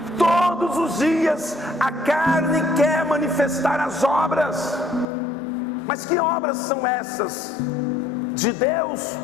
Todos os dias a carne quer manifestar as obras. Mas que obras são essas? De Deus?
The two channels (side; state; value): right; drops out; at 5.1 s